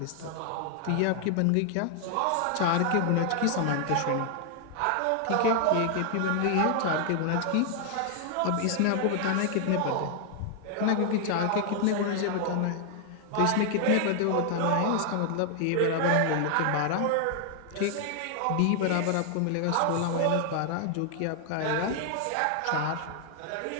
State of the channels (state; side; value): different; both; correlation 0.00